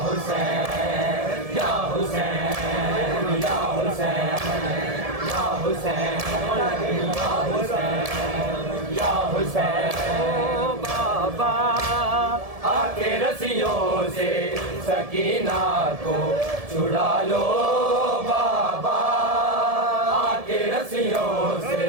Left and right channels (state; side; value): late; left; 1.7 ms